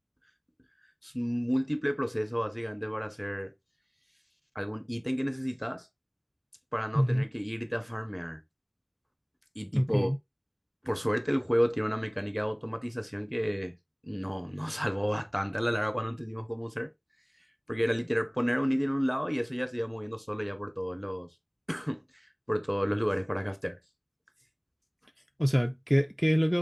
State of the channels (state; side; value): identical; both; correlation 1.00